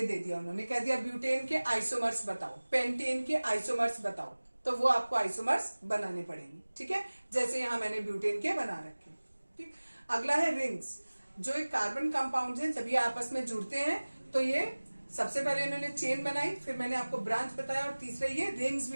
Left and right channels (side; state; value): both; inverted; correlation -1.00